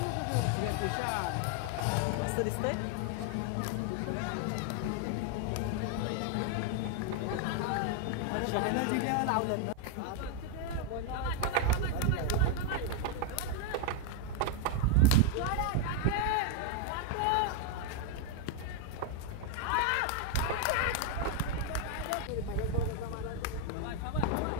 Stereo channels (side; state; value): both; different; correlation 0.00